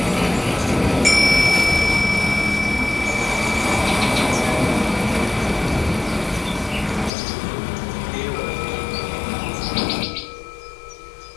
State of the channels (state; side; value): drops out; right; at 7.1 s